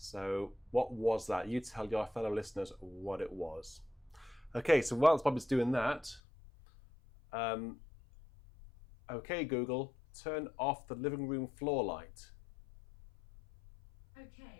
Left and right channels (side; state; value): right; drops out; at 6.2 s